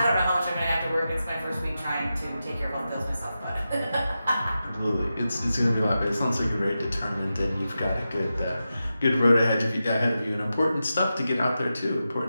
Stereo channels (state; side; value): inverted; both; correlation -0.91